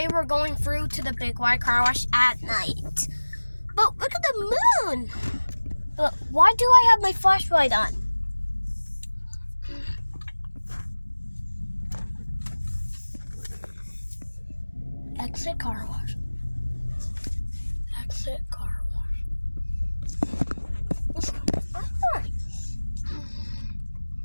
we're going through to the Big Y car wash at night. But look at the moon! Why do I have my flashlight on? Exit car wash. Exit car wash.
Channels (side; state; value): both; inverted; correlation -1.00